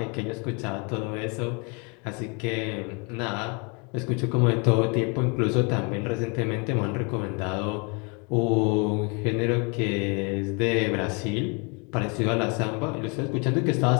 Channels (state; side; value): quieter; right; 32.6 dB